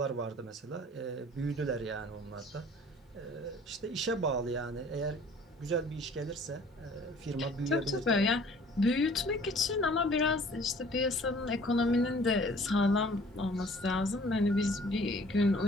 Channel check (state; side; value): normal; both; correlation 0.52